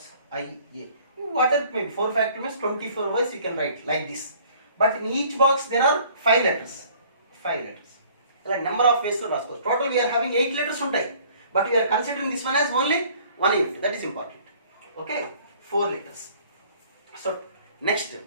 I, A. Whatever it may be, 4 factorial means 24 ways you can write like this. But in each box there are 5 letters. Like number of ways to రాసుకోవచ్చు. Total we are having 8 letters ఉంటాయి, but we are considering this one as only 1 unit. That is important. Okay, 4 letters. So next,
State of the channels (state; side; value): inverted; both; correlation -0.55